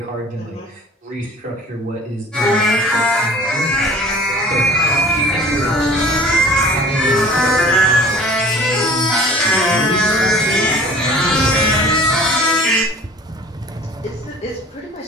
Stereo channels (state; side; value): normal; both; correlation 0.47